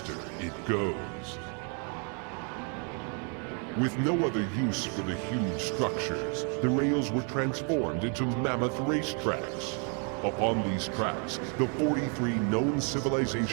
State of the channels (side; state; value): left; quieter; 38.4 dB